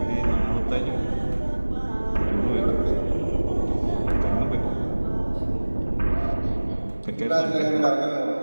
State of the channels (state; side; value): inverted; both; correlation -1.00